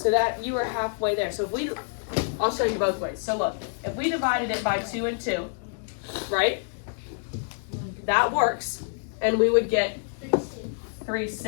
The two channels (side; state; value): right; silent; digital silence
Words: that you were halfway there. So if we, I'll show you both ways. So look, if we divided it by 2 and 2, right, that works, and we would get